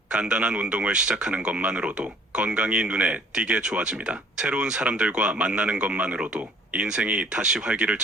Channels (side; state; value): both; normal; correlation 0.55